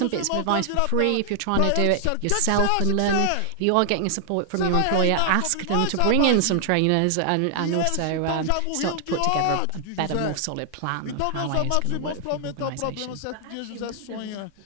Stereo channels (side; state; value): both; different; correlation 0.00